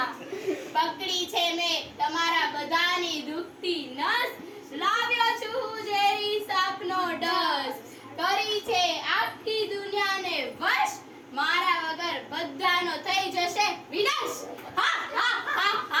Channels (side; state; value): both; identical; correlation 1.00